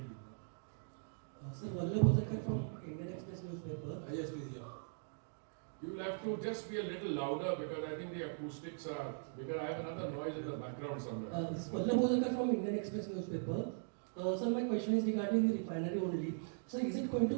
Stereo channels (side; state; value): left; silent; digital silence